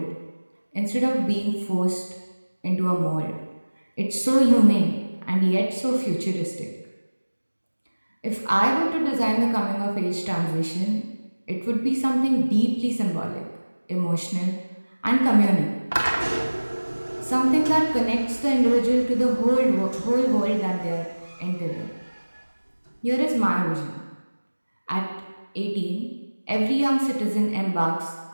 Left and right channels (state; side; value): inverted; both; correlation -1.00